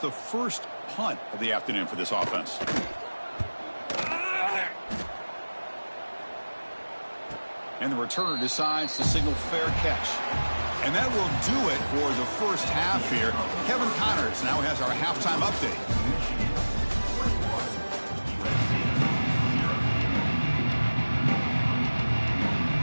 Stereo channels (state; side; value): inverted; both; correlation -1.00